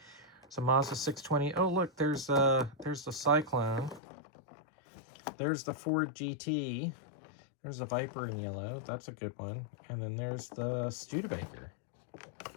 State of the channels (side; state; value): right; drops out; at 4.0 s